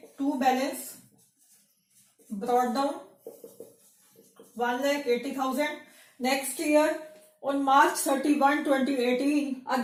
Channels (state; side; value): identical; both; correlation 1.00